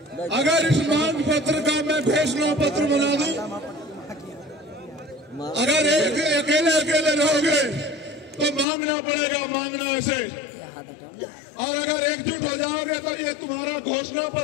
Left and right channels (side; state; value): right; drops out; at 8.7 s